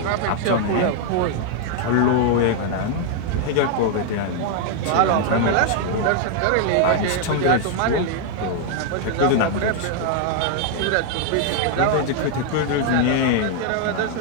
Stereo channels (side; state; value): both; different; correlation 0.00